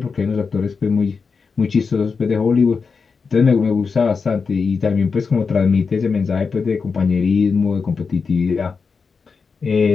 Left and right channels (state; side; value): quieter; right; 5.1 dB